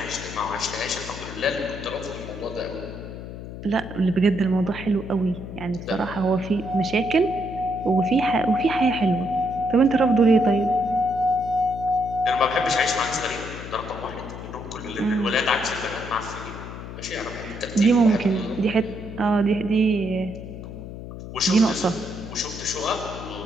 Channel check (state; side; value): noise; left; hum, 10 dB below the sound